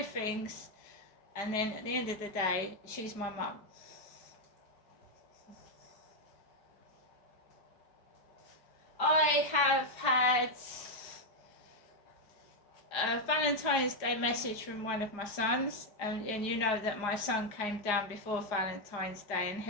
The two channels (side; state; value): right; late; 4.8 ms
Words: things And then at the end of the day, she's my mum. I have had a Valentine's Day message from one of my sons, and you know that my son came down before Valentine's Day and